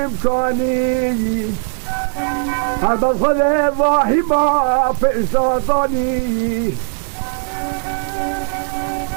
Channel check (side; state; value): left; silent; 65 dB below the other